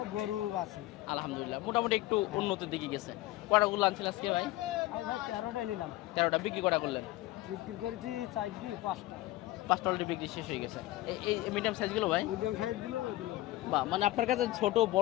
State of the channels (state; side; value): quieter; right; 17.4 dB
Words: গরু আছে। আলহামদুলিল্লাহ মোটামুটি একটু উন্নতির দিকে গেছে। কটাগুলো আনছিল আজকে ভাই? আজ ভাই 13টাই নিলাম, 13টা বিক্রি কটা করলেন? বিক্রি করেছি 5টা। 5টা অলরেডি বিক্রি শেষ হয়ে গেছে। এই মিডিয়াম সাইজগুলো ভাই? মিডিয়াম সাইজ গুলো ওইগুলো। বা মানে আপনার কাছে ছোট